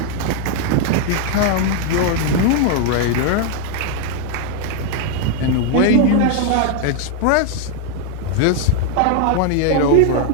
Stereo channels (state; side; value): different; both; correlation 0.00